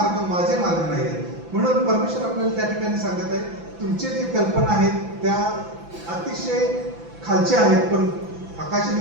माझे मार्ग नाहीयेत. म्हणून परमेश्वर आपल्याला त्या ठिकाणी सांगत आहे, तुमचे जे कल्पना आहेत त्या अतिशय खालच्या आहेत, पण आकाश आणि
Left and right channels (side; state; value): left; late; 5.9 ms